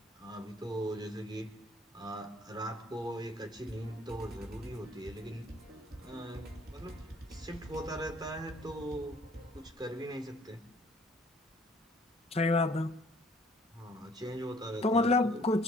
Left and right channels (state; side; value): normal; both; correlation 0.59